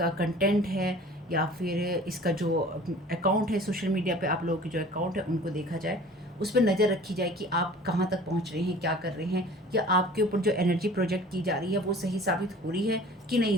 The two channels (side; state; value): both; normal; correlation 0.45